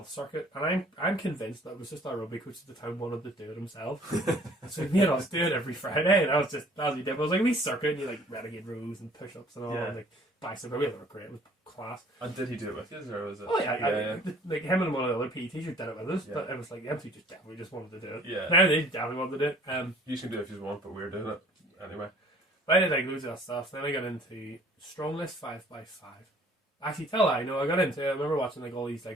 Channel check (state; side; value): normal; both; correlation 0.54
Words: circuit, and I'm convinced that it was just our rugby coach at the time wanted to do it himself. So he made us do it every Friday, and that was what he did. But it was like a wee circuit, and you like renegade rows and push ups and all, and like bicep. We were great. It was class. And did he do it with you, or was it? Oh yeah. Like him and one of the other PE teachers did it with us, but it was like the MC just wanted to do it. Yeah. Now they definitely wanted to do it. You can do it if you want, but we're doing it anyway. But I did like loads of that stuff. Then I got into Strongless 5x5. Actually, I got into it. I remember watching like all these